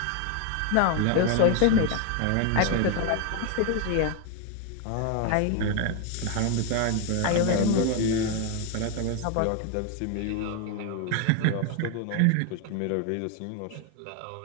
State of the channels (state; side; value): different; both; correlation 0.00